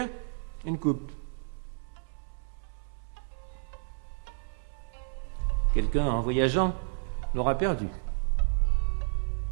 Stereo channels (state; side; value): silent; left; 57 dB below the other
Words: une coupe. Quelqu'un, en voyageant, l'aura perdu.